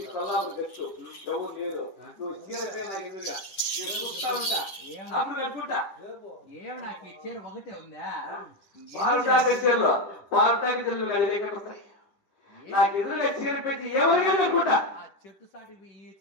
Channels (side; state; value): right; late; 10 ms